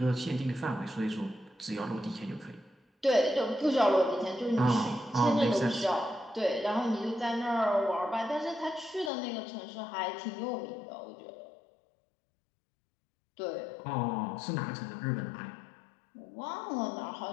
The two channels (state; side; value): drops out; right; at 9.1 s